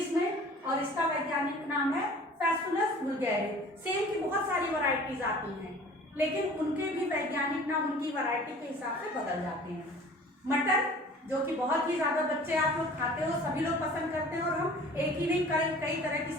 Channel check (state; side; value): normal; both; correlation 0.46